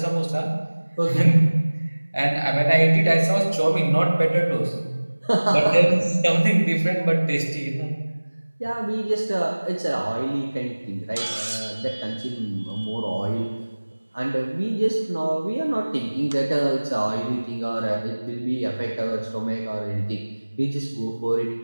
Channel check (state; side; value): inverted; both; correlation -1.00